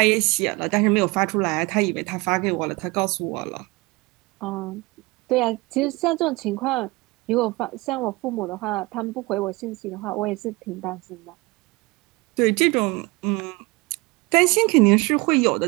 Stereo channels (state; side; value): quieter; left; 24.2 dB